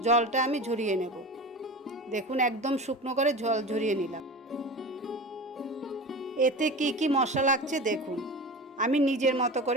জলটা আমি ঝরিয়ে নেব। দেখুন একদম শুকনো করে জল ঝরিয়ে নিলাম। এতে কি কি মশলা লাগছে দেখুন, আমি নিজের মতো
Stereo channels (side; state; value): both; normal; correlation 0.31